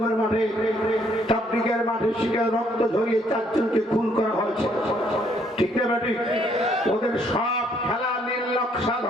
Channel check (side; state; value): both; normal; correlation 0.67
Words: মাঠে, তাবলিগের মাঠে শিকার রক্ত ঝরিয়ে 4 জনকে খুন করা হয়েছে, ঠিক না? ঠিক। ওদের সব খেলা নির্লক্ষা